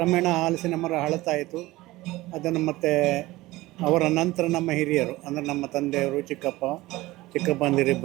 ಹಲಸಿನ ಮರ ಹಳತಾಯಿತು. ಅದನ್ನು ಮತ್ತೆ ಅವರ ನಂತರ ನಮ್ಮ ಹಿರಿಯರು, ಅಂದರೆ ನಮ್ಮ ತಂದೆಯವರು,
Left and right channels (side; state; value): left; quieter; 18.8 dB